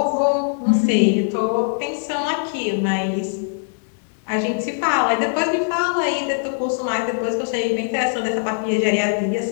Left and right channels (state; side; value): silent; right; digital silence